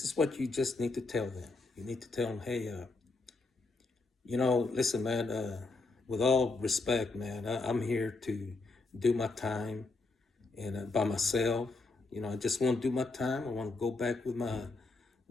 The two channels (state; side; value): quieter; right; 3.6 dB